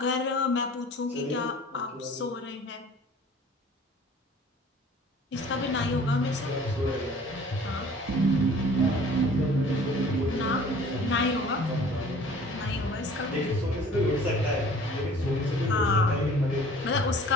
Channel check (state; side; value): normal; both; correlation 0.49